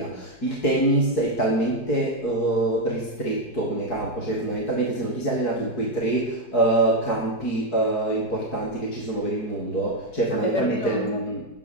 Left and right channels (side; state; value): right; late; 4.7 ms